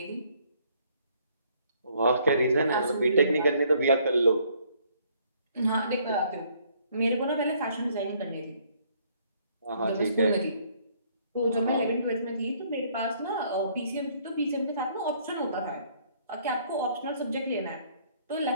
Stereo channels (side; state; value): both; inverted; correlation -0.64